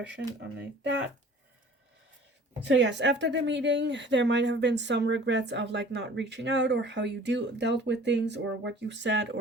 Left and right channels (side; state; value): both; normal; correlation 0.48